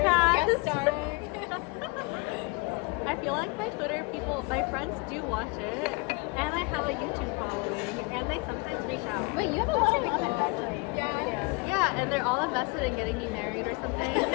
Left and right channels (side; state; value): right; quieter; 27.9 dB